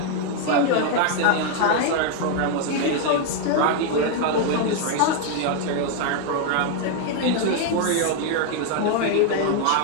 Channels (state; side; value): different; both; correlation 0.00